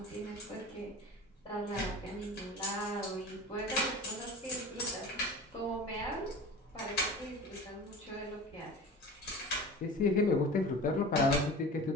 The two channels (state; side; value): normal; both; correlation 0.36